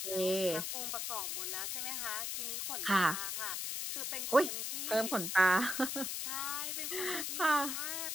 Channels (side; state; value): left; noise; hiss, 2 dB below the sound